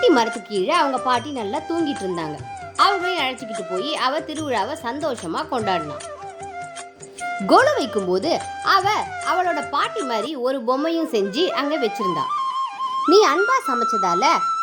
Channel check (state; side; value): identical; both; correlation 1.00